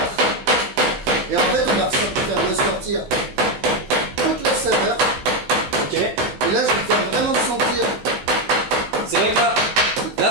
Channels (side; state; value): left; late; 15 ms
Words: Et en fait, on va faire ressortir toute la saveur. Ok. Et là, je vais faire vraiment sentir. C'est vrai que là